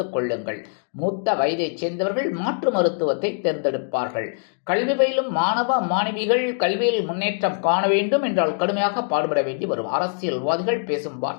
கொள்ளுங்கள். மூத்த வயதைச் சேர்ந்தவர்கள் மாற்று மருத்துவத்தை தேர்ந்தெடுப்பார்கள். கல்வி பயிலும் மாணவ மாணவிகள் கல்வியில் முன்னேற்றம் காண வேண்டும் என்றால் கடுமையாக பாடுபட வேண்டி வரும். அரசியல்வாதிகள் பேசும்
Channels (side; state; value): right; silent; 63 dB below the other